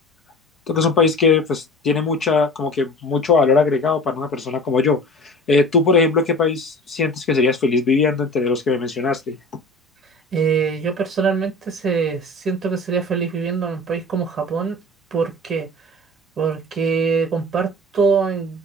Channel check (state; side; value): normal; both; correlation 0.39